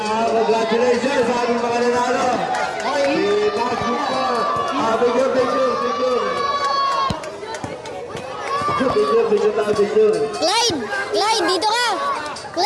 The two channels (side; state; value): both; identical; correlation 1.00